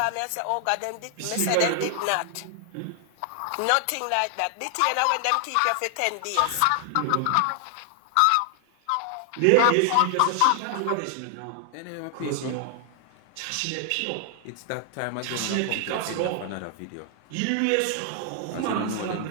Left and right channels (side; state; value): both; different; correlation 0.00